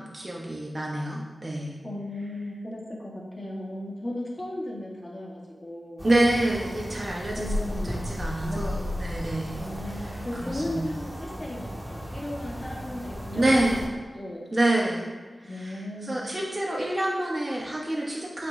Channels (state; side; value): normal; both; correlation 0.95